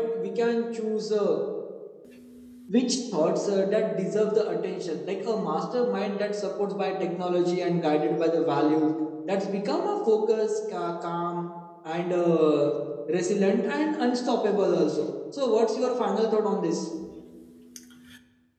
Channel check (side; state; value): both; identical; correlation 1.00